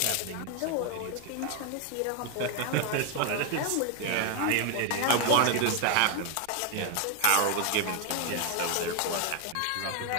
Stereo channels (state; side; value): different; both; correlation 0.01